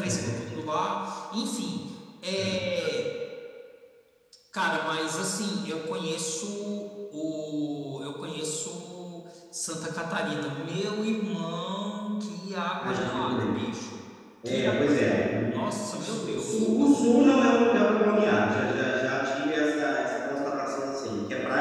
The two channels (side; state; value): both; identical; correlation 1.00